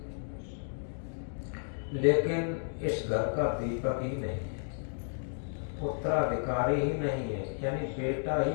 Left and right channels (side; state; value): right; silent; digital silence